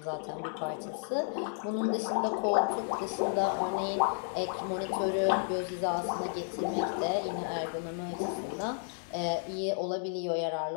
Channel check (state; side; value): silent; right; 56 dB below the other